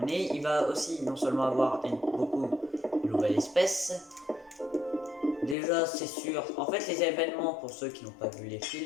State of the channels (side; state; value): right; drops out; at 5.6 s